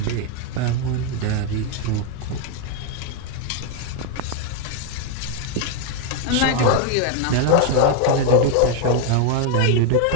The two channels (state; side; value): different; both; correlation 0.01